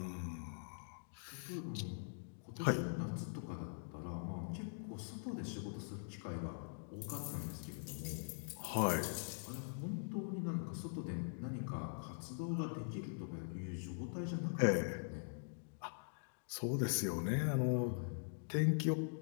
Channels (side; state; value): right; silent; digital silence